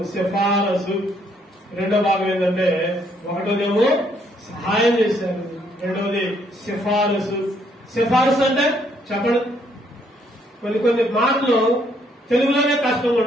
సిఫారసు రెండో భాగం ఏంటంటే, ఒకటోదేమో సహాయం చేశారు, రెండవది సిఫారసు అంటే చెప్పండి. కొన్ని మాటలు తెలుగులోనే కష్టంగా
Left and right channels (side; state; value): both; normal; correlation 0.69